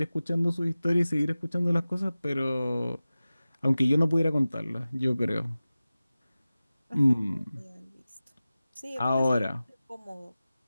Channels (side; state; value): both; inverted; correlation -0.96